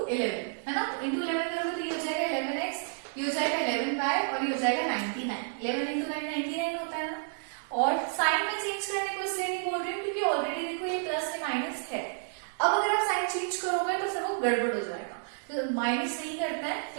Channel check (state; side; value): silent; left; digital silence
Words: 11 है ना, इंटू 11 करोगे तो ये हो जाएगा 11x, ये हो जाएगा 11y और ये हो जाएगा 99। 11 इंटू 9 99 होता है ना। और साइन में चेंज करने को इसलिए नहीं बोल रही हूँ क्योंकि ऑलरेडी देखो ये प्लस से माइनस है। अब अगर आप साइन चेंज करोगे तो फिर वो गड़बड़ हो जाएगा, तो माइनस नहीं करते हैं,